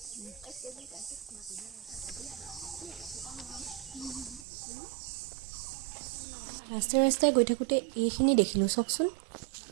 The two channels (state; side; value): drops out; left; at 4.5 s